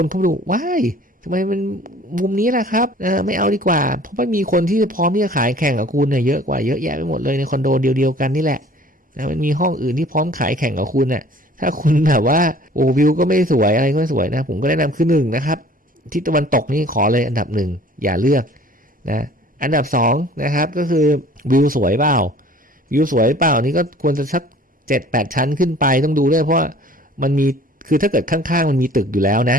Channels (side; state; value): both; normal; correlation 0.50